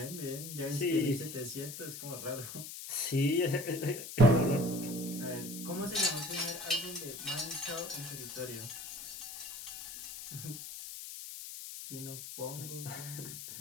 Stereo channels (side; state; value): left; noise; hiss, 9 dB below the sound